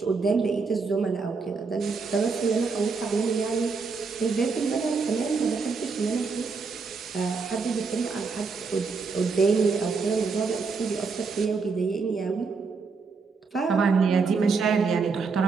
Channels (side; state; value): left; quieter; 4.8 dB